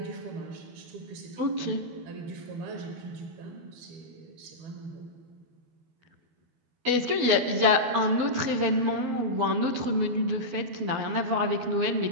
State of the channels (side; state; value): left; late; 12 ms